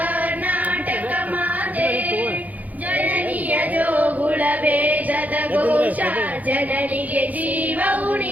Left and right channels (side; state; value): left; late; 0.078 ms